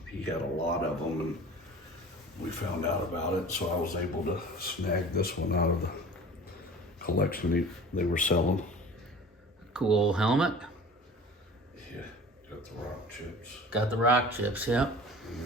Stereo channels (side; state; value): both; normal; correlation 0.41